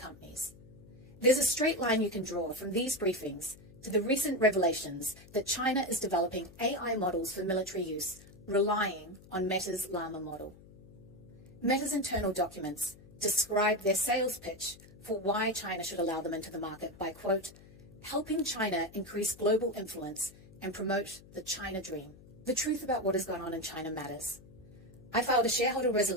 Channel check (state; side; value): noise; left; hum, 21 dB below the sound